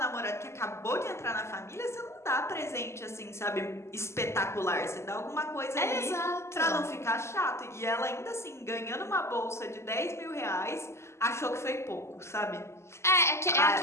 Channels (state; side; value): late; right; 0.13 ms